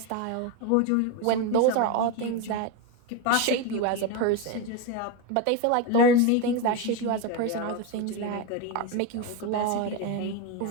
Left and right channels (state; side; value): different; both; correlation 0.04